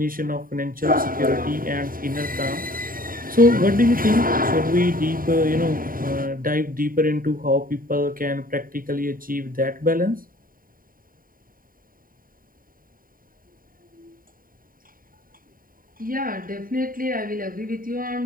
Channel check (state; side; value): late; left; 0.41 ms